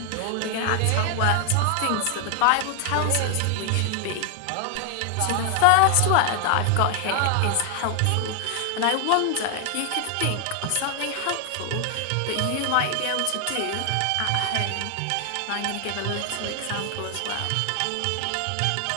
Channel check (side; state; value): both; different; correlation 0.00